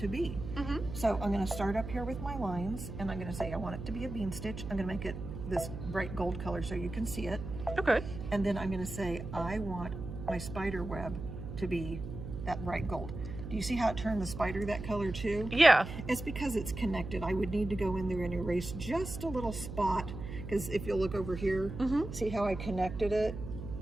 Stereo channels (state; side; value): noise; right; hum, 8 dB below the sound